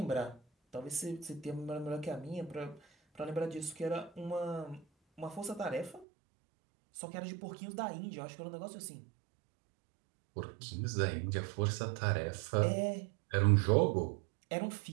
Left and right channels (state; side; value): drops out; left; at 6.1 s